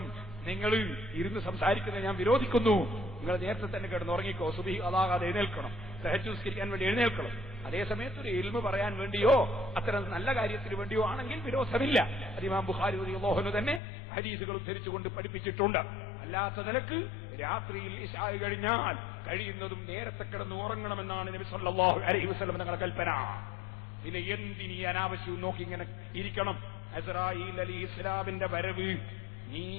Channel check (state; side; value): drops out; right; at 13.8 s